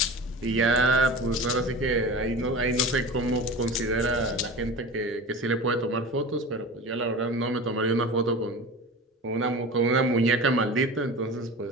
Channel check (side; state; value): both; normal; correlation 0.33